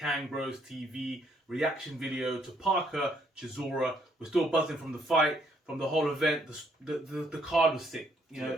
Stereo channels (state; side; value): normal; both; correlation 0.69